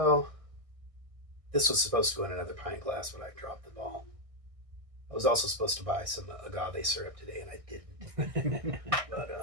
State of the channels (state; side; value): late; left; 1.6 ms